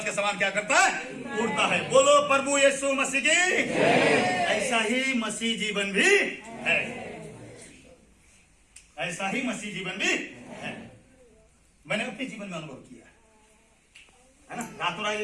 के समान क्या करता है? उड़ता है। बोलो प्रभु यीशु मसीह की। ऐसा ही मसीह जीवन भी है, ऐसा ही मसीह जीवन भी है। मैंने अपने जीवन में अनुभव किया है ना। रातों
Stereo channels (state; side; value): identical; both; correlation 1.00